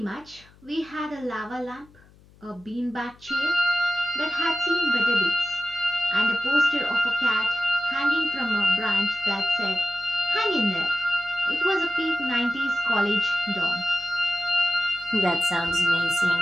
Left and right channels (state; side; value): noise; left; hum, 27 dB below the sound